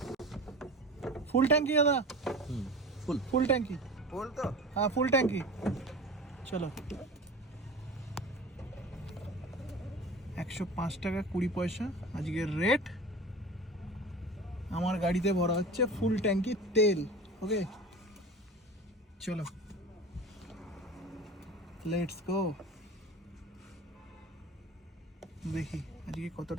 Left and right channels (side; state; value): both; normal; correlation 0.35